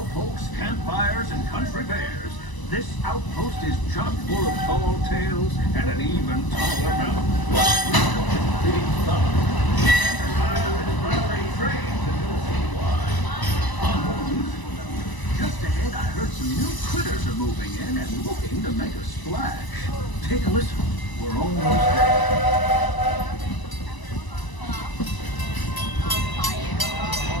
campfires, and country bears, this outpost is chock full of tall tales and an even taller mountain. Big fun. Just ahead, I heard some new critters are moving in and looking to make a splash. Take a listen. We're almost there.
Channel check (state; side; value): late; right; 1.0 ms